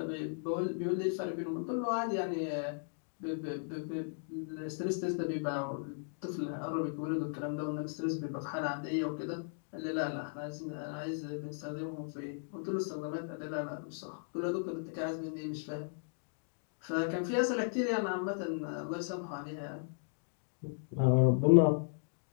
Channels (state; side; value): silent; right; digital silence